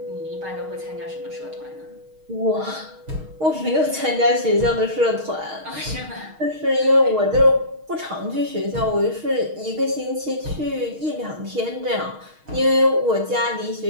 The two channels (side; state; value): left; late; 6.4 ms